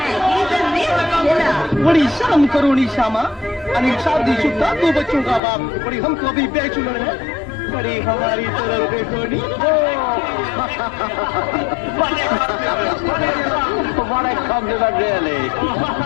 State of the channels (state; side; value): drops out; right; at 5.4 s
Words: बड़ी शर्म करो निशामा। अनिल शादीशुदा 2 बच्चों का बाप, बड़ी हमको अभी बैचलर है, बड़ी हमारी तरफ देखो नी। What a compliment, really.